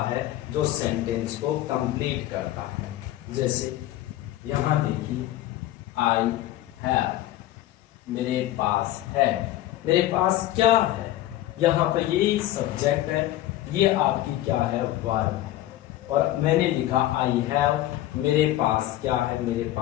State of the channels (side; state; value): right; quieter; 14.5 dB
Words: है जो सेंटेंस को कंप्लीट करता है। जैसे यहां देखिए, आई हैव, मेरे पास है। मेरे पास क्या है? यहाँ पर ये सब्जेक्ट है, ये आपकी क्या है? वर्ब है। और मैंने लिखा आई हैव, मेरे पास क्या है? मेरे